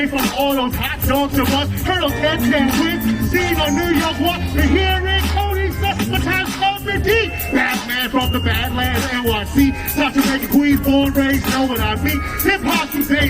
from all those hot dogs of us. Heard those 10 wins, seen on New York Walk. The hearing, Cody, the time's coming deep. Batman from the Badlands, NYC. Not to make a queen, born, raised, know what I mean. Hip hop these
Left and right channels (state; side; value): identical; both; correlation 1.00